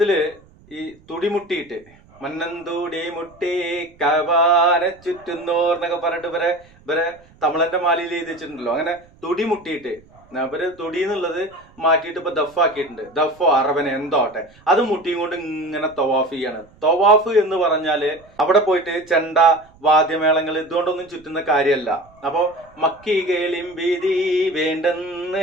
ഈ തുടിമുട്ടിയിട്ട് മന്നന്തൂടി മുട്ടി കഅബാനെ ചുറ്റുന്നോർ എന്നൊക്കെ പറഞ്ഞിട്ട് ഇവരെ തമിഴന്റെ മാലയിൽ എഴുതി വെച്ചിട്ടുണ്ടല്ലോ. അങ്ങനെ തുടിമുട്ടിയിട്ട് അവര് തുടി എന്നുള്ളത് മാറ്റിയിട്ട് ഇപ്പൊ ദഫാക്കിയിട്ടുണ്ട്. ദഫോ അറബന എന്തോട്ടെ അത് മുട്ടിയും കൊണ്ട് ഇങ്ങനെ തവാഫ് ചെയ്യാണ്. തവാഫ് എന്ന് പറഞ്ഞാല് അവിടെ പോയിട്ട് ചെണ്ട വാദ്യമേളങ്ങൾ ഇതുകൊണ്ടൊന്നും ചുറ്റുന്ന കാര്യമല്ല. അപ്പൊ മക്കി കേളിം ഭീതി വേണ്ടെന്ന്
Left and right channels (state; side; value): noise; right; rumble, 28 dB below the sound